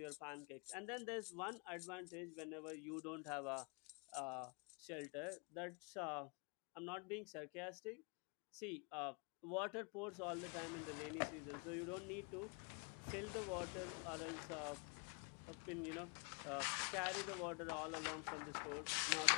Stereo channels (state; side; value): quieter; right; 35.7 dB